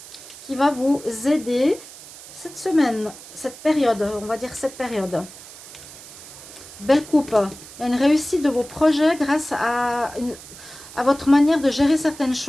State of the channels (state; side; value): noise; right; hiss, 17 dB below the sound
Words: qui va vous aider cette semaine, cette période, on va dire cette période. Belle coupe. Il y a une réussite de vos projets grâce à votre manière de gérer certaines